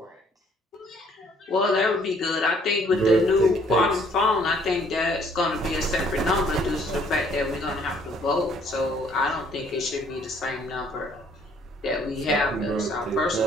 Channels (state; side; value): normal; both; correlation 0.62